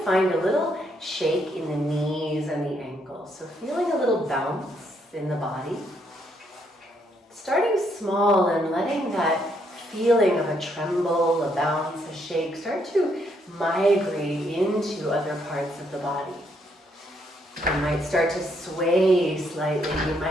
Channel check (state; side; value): normal; both; correlation 0.73